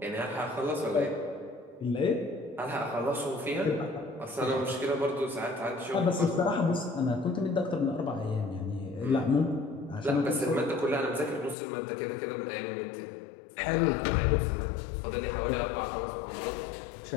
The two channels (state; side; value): drops out; right; at 11.6 s